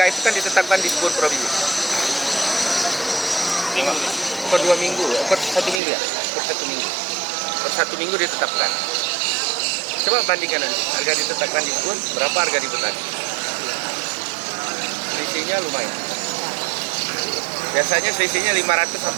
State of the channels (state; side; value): drops out; left; at 5.8 s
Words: itu kan ditetapkan di sebuah provinsi. Per 2 minggu, per 1 minggu ya, per 1 minggu. Per 1 minggu ditetapkan. Coba bandingkan nanti, harga ditetapkan di kebun, berapa harga di petani. Selisihnya lumayan. Biasanya selisihnya 500